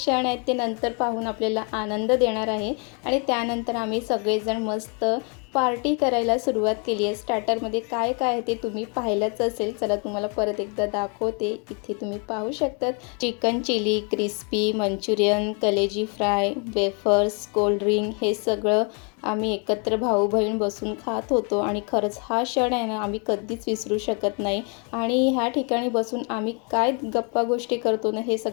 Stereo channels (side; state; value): right; quieter; 36.1 dB